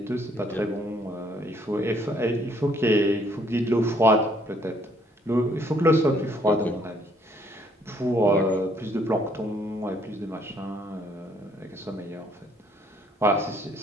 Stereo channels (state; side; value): normal; both; correlation 0.65